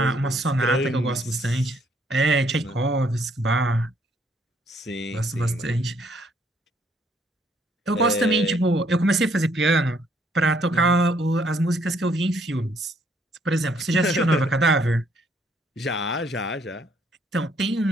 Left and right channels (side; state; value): both; normal; correlation 0.67